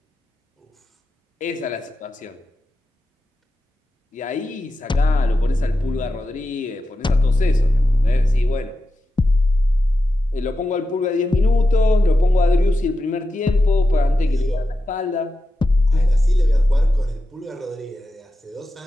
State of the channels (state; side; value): normal; both; correlation 0.91